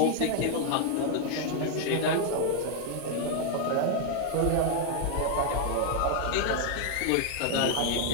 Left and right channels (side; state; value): both; different; correlation 0.00